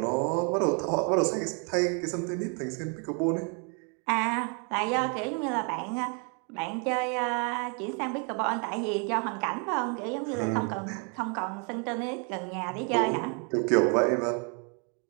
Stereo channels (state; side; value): quieter; left; 37.5 dB